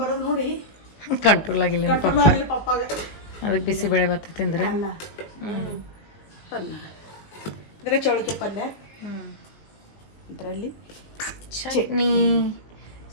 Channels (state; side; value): late; right; 19 ms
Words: ಬರೋದು ನೋಡಿ ಕಂಟ್ರೋಲ್ ಆಗಿಲ್ಲ ಪಪ್ಪಾಗ. ಅದಕ್ಕೆ ಬಿಸಿಬೇಳೆ ಬಾತ್ ತಿಂದ್ರೆ ಇದ್ರೆ ಚೌಳಿಕೆ ಪಲ್ಯ, ಇದರಲ್ಲಿ ಚಟ್ನಿ.